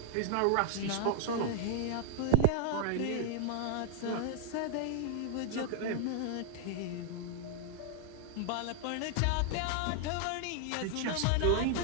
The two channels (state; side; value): different; both; correlation 0.00